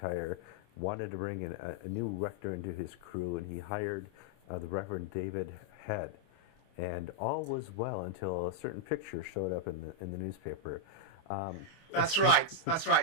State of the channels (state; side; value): late; right; 25 ms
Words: wanted to bring in a new rector into his crew, and he hired the Reverend David Head. And all was well until a certain picture showed up in the newspaper. That's right.